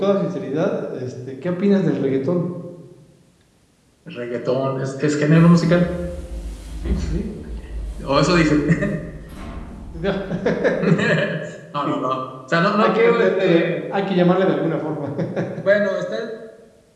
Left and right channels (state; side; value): identical; both; correlation 1.00